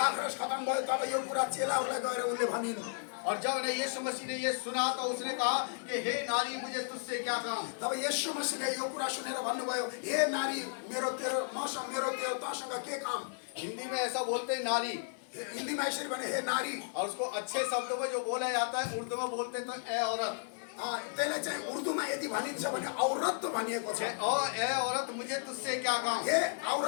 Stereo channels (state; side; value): silent; right; 55 dB below the other